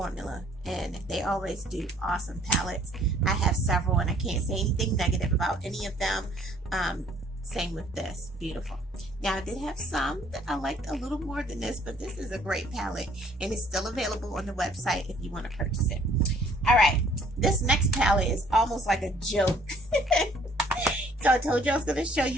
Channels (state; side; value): normal; both; correlation 0.60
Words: and they always do awesome palettes. I have several, and I can't say anything negative about any of them. Same with this, beautiful. Now, I did have some that I liked a little more than this, but this is a great palette, and it's still available on the website if you want to purchase it. All right, this next palette is almost like a joke. So I told you I was going to show